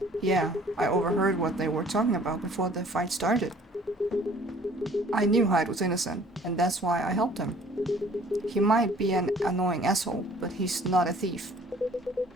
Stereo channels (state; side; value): normal; both; correlation 0.54